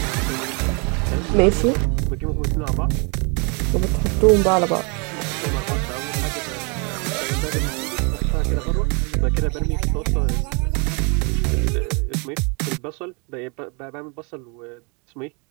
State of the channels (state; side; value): quieter; left; 33.4 dB